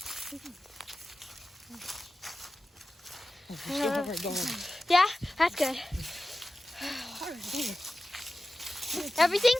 Yeah, that's good. Everything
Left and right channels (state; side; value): normal; both; correlation 0.94